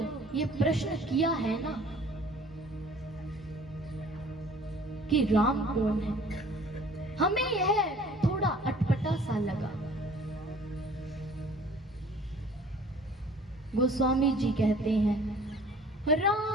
ये प्रश्न किया है ना कि राम कौन है, हमें यह थोड़ा अटपटा सा लगा। गोस्वामी जी कहते हैं,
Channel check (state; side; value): normal; both; correlation 0.51